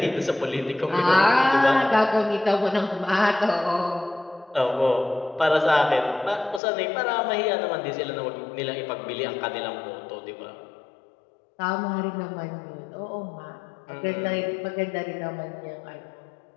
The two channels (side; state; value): right; drops out; at 6.6 s